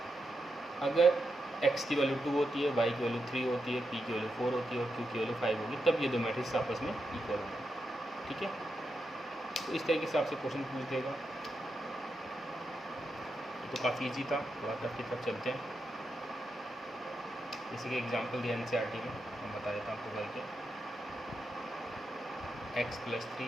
अगर एक्स की वैल्यू 2 होती है, वाई की वैल्यू 3 होती है, पी की वैल्यू 4 होती है और क्यू की वैल्यू 5 होगी, तब ये दो मैट्रिक्स आपस में इक्वल होंगे। ठीक है, तो इस तरीके से आपसे क्वेश्चन पूछ देगा। तो काफ़ी इजी था, थोड़ा टफ की तरफ चलते हैं। इसी के एग्जाम्पल दिया एनसीईआरटी में, मैं बता देता हूँ आपको करके। x +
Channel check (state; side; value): normal; both; correlation 0.86